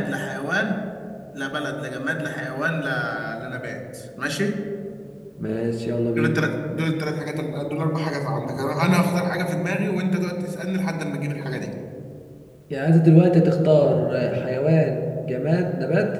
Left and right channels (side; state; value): both; identical; correlation 1.00